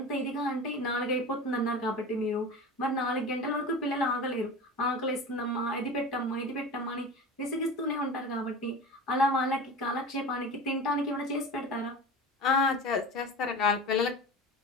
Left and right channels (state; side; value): normal; both; correlation 0.32